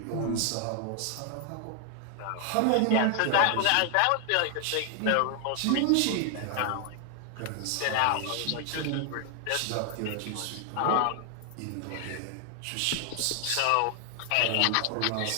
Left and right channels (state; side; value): different; both; correlation 0.00